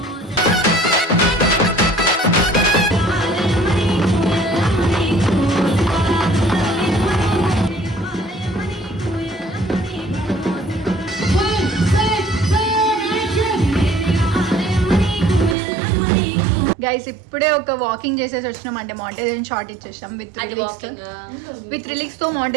గైస్ ఇప్పుడే ఒక వాకింగ్ చేసేసి వచ్చినాం. అంటే మాంటేరియన్ షార్ట్ ఇచ్చేసినాం విత్ రిలీక్స్ తో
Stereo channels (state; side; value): drops out; left; at 15.6 s